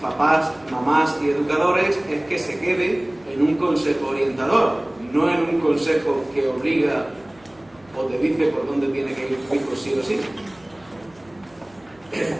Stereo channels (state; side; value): noise; right; hum, 30 dB below the sound